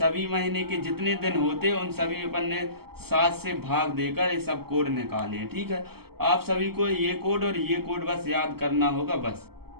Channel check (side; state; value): left; late; 0.96 ms